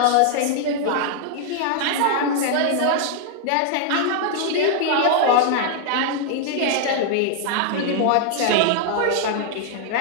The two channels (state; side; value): different; both; correlation -0.01